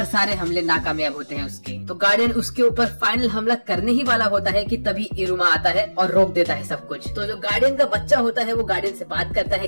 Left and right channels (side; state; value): both; inverted; correlation -1.00